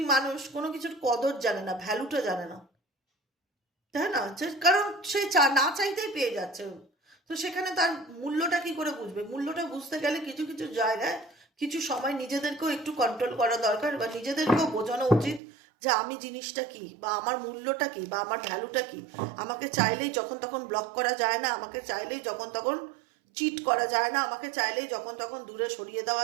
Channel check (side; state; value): left; drops out; at 15.4 s